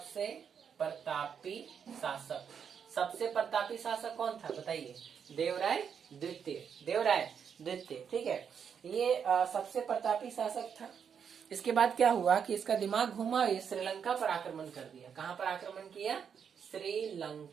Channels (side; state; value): left; quieter; 7.3 dB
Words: प्रतापी शासक कौन था बताइए, देवराय द्वितीय, ठीक है। ये सबसे प्रतापी शासक था। इसके बाद क्या हुआ कि इसका दिमाग घुमा, ये श्रीलंका पर आक्रमण कर दिया। कहां पर आक्रमण किया,